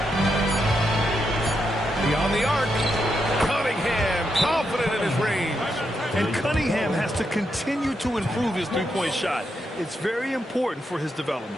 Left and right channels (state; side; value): normal; both; correlation 0.83